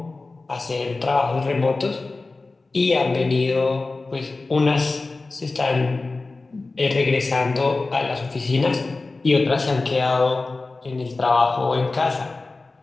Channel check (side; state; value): right; quieter; 3.5 dB